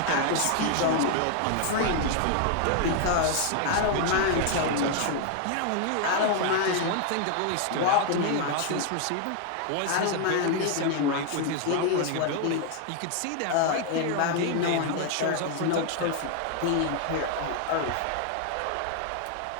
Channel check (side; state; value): both; different; correlation 0.00